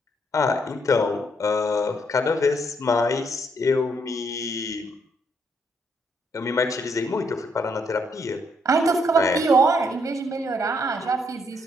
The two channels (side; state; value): both; normal; correlation 0.72